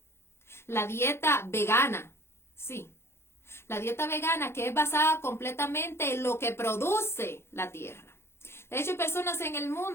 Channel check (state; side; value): late; right; 0.12 ms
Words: la dieta vegana, sí, la dieta vegana que es basada completamente en lo que produce la tierra. De hecho, hay personas en el